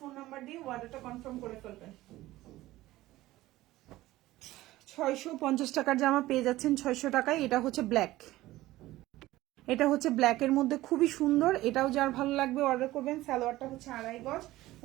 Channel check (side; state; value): left; quieter; 16.9 dB